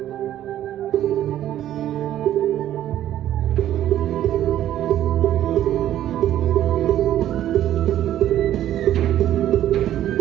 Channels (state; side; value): quieter; left; 12.1 dB